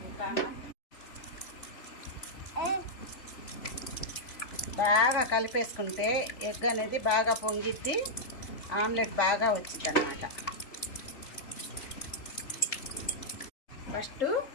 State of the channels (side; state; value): right; late; 3.4 ms